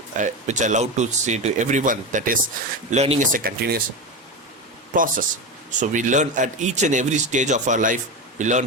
I love to say to everyone, that is, learning is a continuous process. So we learn at each and every stage of our life. We learn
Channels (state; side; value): normal; both; correlation 0.20